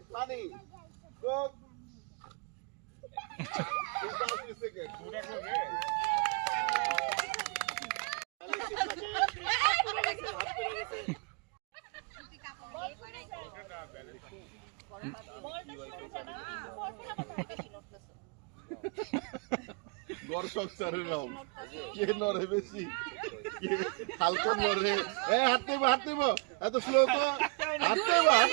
পানি কোক দর্শক স্যারের নাম কে নড়ে বেশি হালকা নড়ে হাত নেব এত স্লো তো হাত নেব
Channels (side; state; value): left; quieter; 34.1 dB